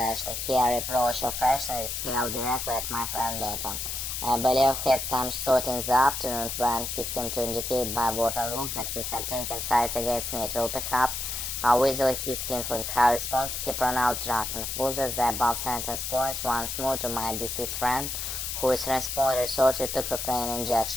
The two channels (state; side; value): noise; left; hiss, 4 dB below the sound